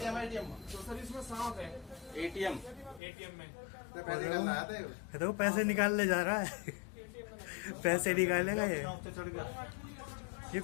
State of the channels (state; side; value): drops out; right; at 3.0 s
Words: एटीएम में तो पैसे निकालने जा रहा है। पैसे निकालेगा ये